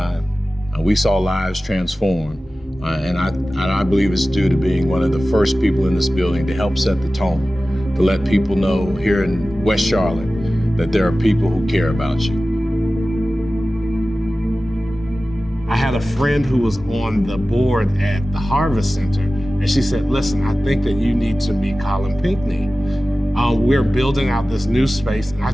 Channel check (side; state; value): both; normal; correlation 0.96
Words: We saw lives transform, and I believe it's due to being one of the first people in this building to help set the tone, to let people know here in West Charlotte that there are people who care about you. I had a friend who was on the board at the Harvest Center, and she said, listen, I think that you need to meet Colin Pinckney. We're building out this new space, and I